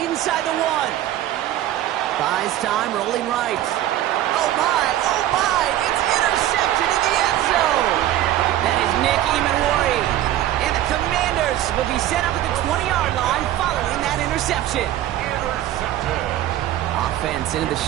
the 1. Buys time, rolling right. Oh, my. It's intercepted in the end zone. That is Nick Emanwari. And the Commanders will be set up at the 20-yard line following that interception. Offense into the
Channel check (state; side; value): quieter; left; 13.2 dB